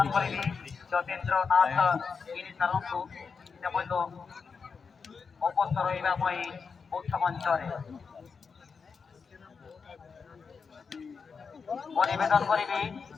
करिबी ज्योतिन्द्र नाथ इनी सरंगु तेमनो অবসর হইবাময় মুখ্যমঞ্চরে পরিবেদন করিবি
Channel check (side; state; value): right; quieter; 5.4 dB